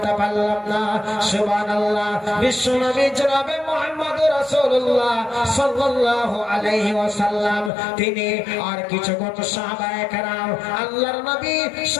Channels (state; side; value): drops out; right; at 7.7 s